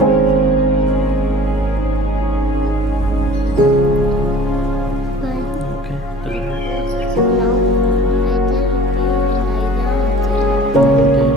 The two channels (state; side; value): normal; both; correlation 0.47